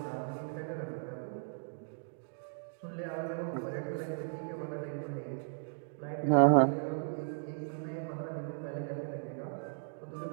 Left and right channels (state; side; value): silent; left; digital silence